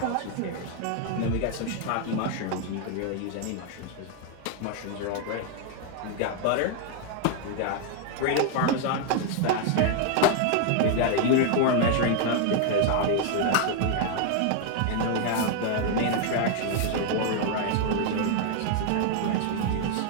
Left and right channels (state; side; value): different; both; correlation 0.00